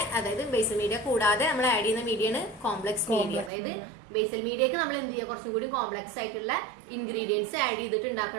അതായത് ബേസൽ മീഡിയ കൂടാതെ നമ്മൾ ആഡ് ചെയ്യുന്ന മീഡിയയാണ് കോംപ്ലക്സ് മീഡിയ. അതായത് ബേസൽ മീഡിയക്ക് നമ്മൾ എന്ത് ചെയ്യുക, കുറച്ചും കൂടി കോംപ്ലക്സ് ആയിട്ടുള്ള ഇൻഗ്രീഡിയൻസ് ആഡ് ചെയ്തിട്ട്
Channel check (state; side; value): drops out; left; at 3.5 s